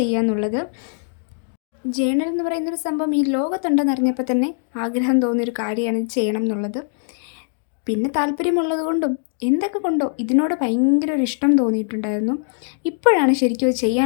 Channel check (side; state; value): right; silent; 65 dB below the other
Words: എന്നുള്ളത്. ജേണൽ എന്ന് പറയുന്നൊരു സംഭവം ഈ ലോകത്തുണ്ടെന്ന് അറിഞ്ഞപ്പോൾ തന്നെ ആഗ്രഹം തോന്നിയൊരു കാര്യമാണ് ഇത് ചെയ്യണം എന്നുള്ളത്. പിന്നെ താല്പര്യമുള്ളത് കൊണ്ടും എന്തൊക്കെ കൊണ്ടോ ഇതിനോട് ഭയങ്കര ഒരു ഇഷ്ടം തോന്നിയിട്ടുണ്ടായിരുന്നു. ഇപ്പോഴാണ് ശരിക്കും അത്